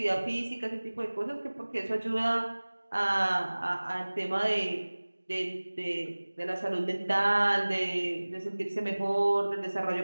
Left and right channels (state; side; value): inverted; both; correlation -1.00